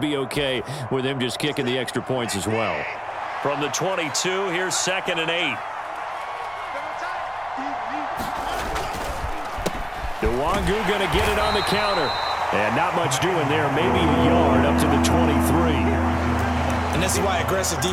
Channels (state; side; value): identical; both; correlation 1.00